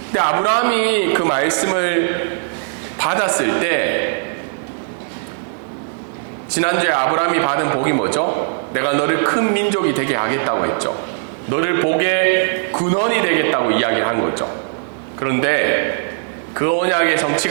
근데 아브라함이 그 말씀을 받았을 때 지난주에 아브라함이 받은 복이 뭐죠? 내가 너를 큰 민족이 되게 하겠다고 했죠. 너를 복의 근원이 되겠다고 이야기를 한 거죠. 그런데 그 언약의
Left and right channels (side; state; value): left; silent; digital silence